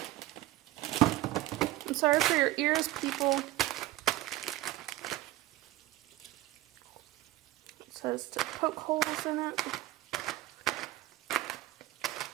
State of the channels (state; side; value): quieter; left; 16.7 dB